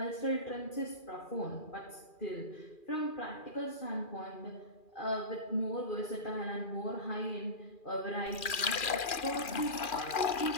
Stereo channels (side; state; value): right; late; 2.4 ms